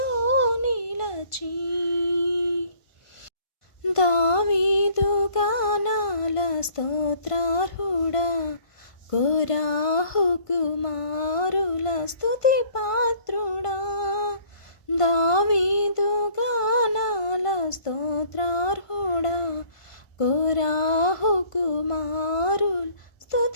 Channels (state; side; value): late; right; 1.5 ms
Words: నిలిచి దావీదు గానాల స్తోత్రార్హుడా కోరాహు కుమారుల స్తుతి పాత్రుడా దావీదు గానాల స్తోత్రార్హుడా కోరాహు కుమారుల